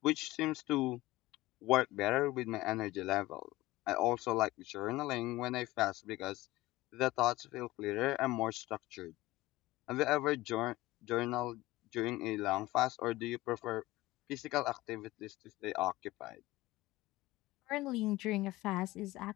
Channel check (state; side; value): quieter; right; 18.5 dB